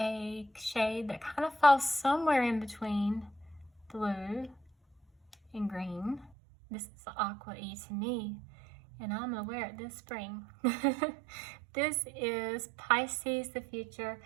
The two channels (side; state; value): left; drops out; at 6.3 s